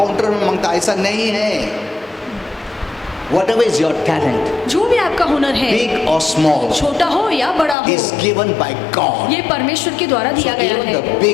में मांगता, ऐसा नहीं है। Whatever is your talent, जो भी आपका हुनर है, big or small, छोटा हो या बड़ा हो, is given by God. ये परमेश्वर के द्वारा So दिया गया even है। the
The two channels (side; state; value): right; drops out; at 7.8 s